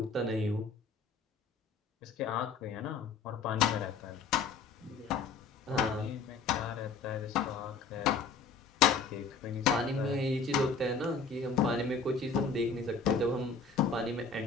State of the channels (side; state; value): right; quieter; 4.9 dB